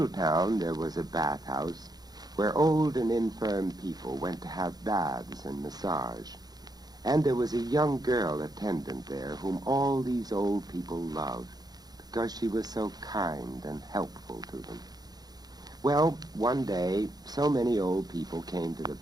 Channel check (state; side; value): late; left; 0.19 ms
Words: town there was a bathhouse where old and infirm people went to have baths and massage. And there was a young girl attendant there whom all these old people loved because she was so kind and helpful to them. Well, one day, so many old people came to the